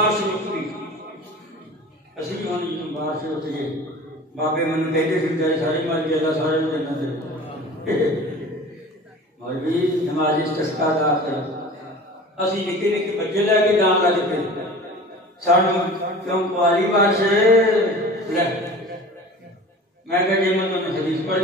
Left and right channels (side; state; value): both; normal; correlation 0.39